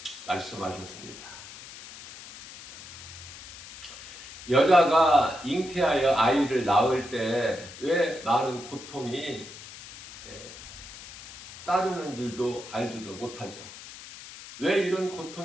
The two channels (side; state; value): left; noise; hiss, 15 dB below the sound